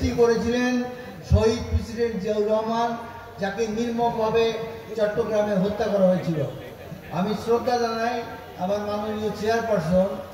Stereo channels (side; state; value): both; identical; correlation 1.00